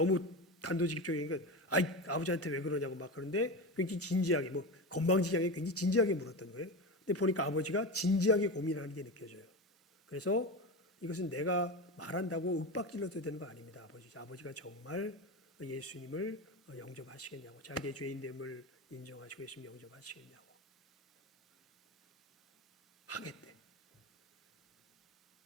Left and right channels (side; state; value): both; normal; correlation 0.22